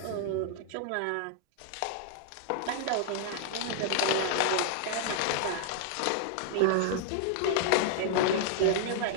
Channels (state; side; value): different; both; correlation -0.01